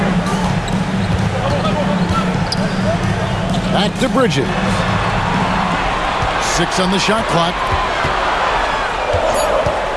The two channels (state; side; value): identical; both; correlation 1.00